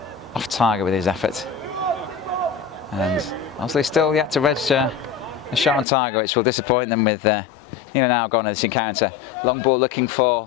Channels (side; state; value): right; drops out; at 5.9 s